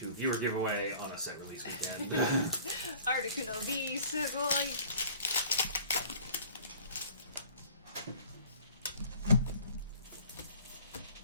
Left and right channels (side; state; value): both; inverted; correlation -0.49